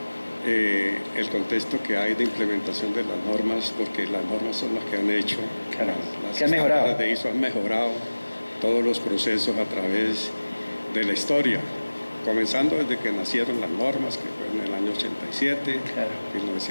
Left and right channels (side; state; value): both; inverted; correlation -1.00